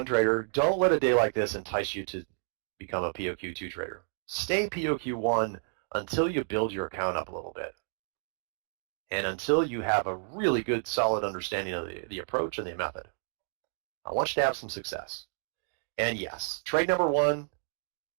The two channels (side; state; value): left; silent; digital silence